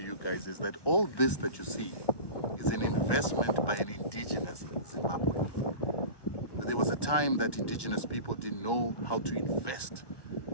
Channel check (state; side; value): late; right; 1.2 ms